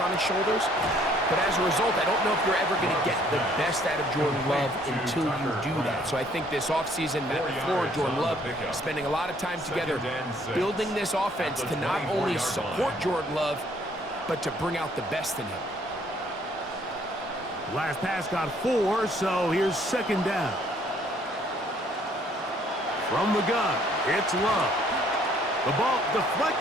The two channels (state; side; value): normal; both; correlation 0.63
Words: his shoulders. But as a result, I don't know if you're ever going to get the best out of Jordan Love until you do that. So I think this offseason, Matt LaFleur and Jordan Love spending a lot of time together building this offense to not only support Jordan Love, but to bring out the best in him. Last pass got 4, so here's second down. From the gun, it's Love. The ball